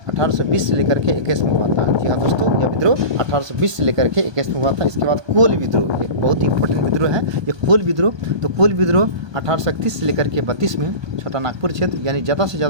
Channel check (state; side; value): late; left; 1.2 ms